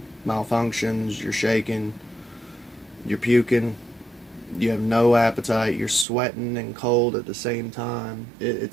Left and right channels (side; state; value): left; drops out; at 6.1 s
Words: malfunctions, you're shaking, you're puking, you have no appetite, you're sweating and cold at the same time.